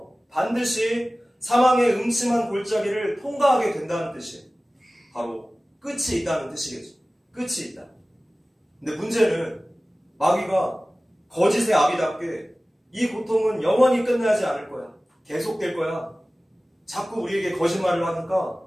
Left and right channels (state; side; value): normal; both; correlation 0.97